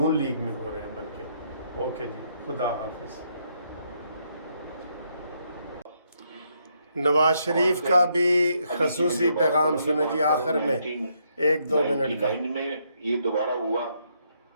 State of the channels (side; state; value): both; inverted; correlation -0.75